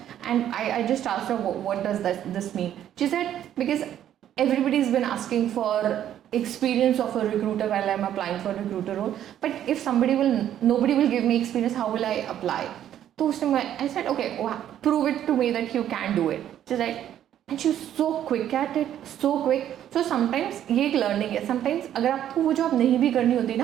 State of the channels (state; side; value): quieter; left; 10.9 dB